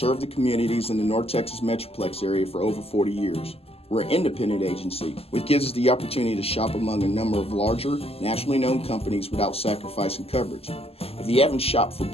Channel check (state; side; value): late; right; 0.29 ms